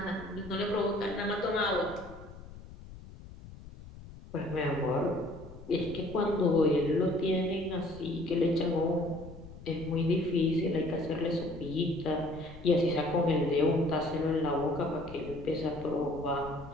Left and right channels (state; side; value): noise; left; rumble, 16 dB below the sound